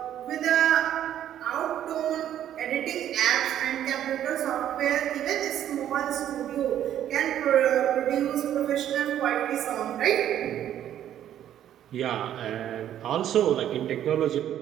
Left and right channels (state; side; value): quieter; left; 11.0 dB